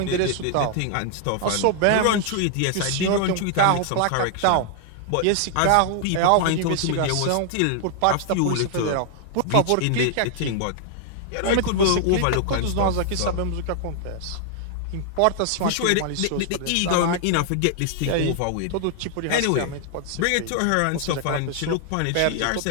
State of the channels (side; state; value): both; different; correlation 0.00